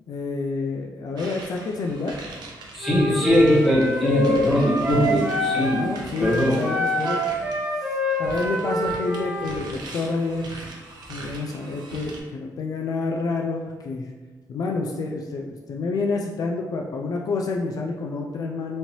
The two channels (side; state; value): both; normal; correlation 0.72